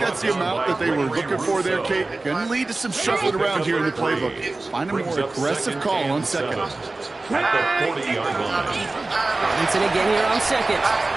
the amount that they were looking for there, Kate. Going to lead to some shuffling around here in the playbook. Find a more aggressive call on 2nd. At the 40-yard line. Robinson again here on 2nd.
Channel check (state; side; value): quieter; left; 3.2 dB